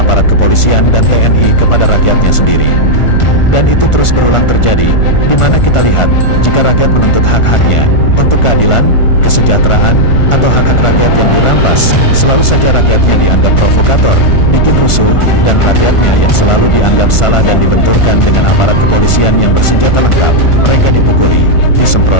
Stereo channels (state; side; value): late; right; 1.4 ms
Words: kepolisian dan TNI kepada rakyatnya sendiri. Dan itu terus berulang terjadi, di mana kita lihat, jika rakyat menuntut hak-haknya, untuk keadilan, kesejahteraan, atau hak-hak rakyat yang dirampas, selalu saja rakyatnya dianggap provokator, bikin rusuh, dan rakyatnya yang selalu dianggap salah dan dibenturkan dengan aparat kepolisian yang bersenjata lengkap, mereka dipukuli,